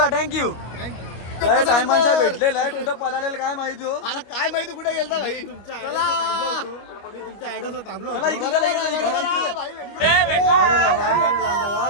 थँक्यू. काय टायमांचा भेटलेला आहे. कुठं पळालेलं काय माहिती हो. अरे काय माहिती कुठे गेलता भाई. तुमच्या मी तुमच्या ॲड्रेसवर थांबलो. चला इकडून चला, इकडून.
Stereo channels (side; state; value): right; late; 25 ms